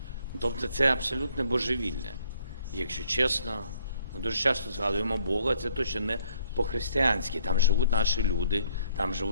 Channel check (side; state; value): both; inverted; correlation -0.65